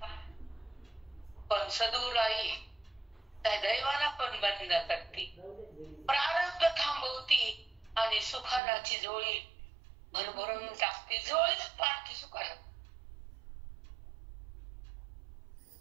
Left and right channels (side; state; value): left; drops out; at 8.6 s